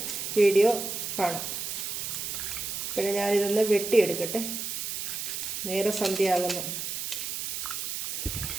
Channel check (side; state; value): right; noise; hiss, 4 dB below the sound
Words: വീഡിയോ കാണാം. അപ്പോഴേ ഞാനിതൊന്ന് വെട്ടിയെടുക്കട്ടെ. നേരെ സന്ധ്യയാകുന്നു.